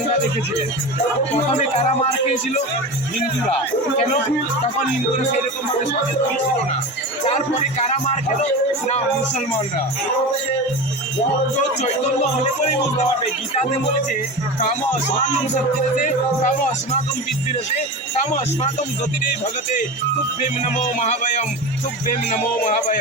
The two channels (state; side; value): normal; both; correlation 0.27